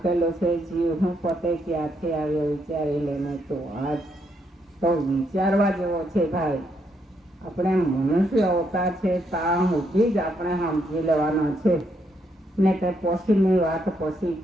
છે જીવ. હું પોતે ક્યાંથી આવ્યો વિચારી લેને. તો આજ તો વિચારવા જેવો છે ભાઈ. આપણે મનુષ્ય અવતાર છે, ત્યાં સુધી જ આપણે સમજી લેવાના છે ને તે પછીની વાત પછી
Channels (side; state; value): both; normal; correlation 0.76